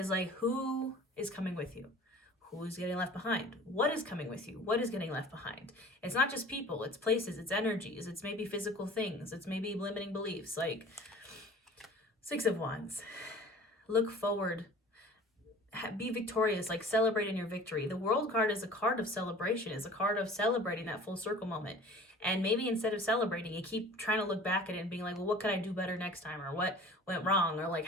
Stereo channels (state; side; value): normal; both; correlation 0.45